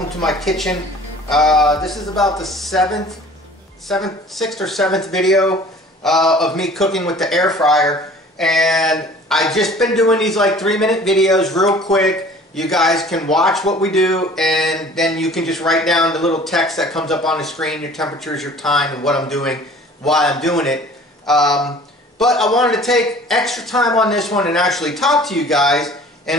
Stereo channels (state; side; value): normal; both; correlation 0.48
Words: to my kitchen. This is about the sixth or seventh video of me cooking with the air fryer, and I've just been doing these like 3-minute videos real quick. You guys can watch what we do, and then you can just write down the little text that comes up on the screen, your temperatures, your time, and what I'm doing, why I'm doing it. But I wanted to take extra time on this one and actually talk to you guys.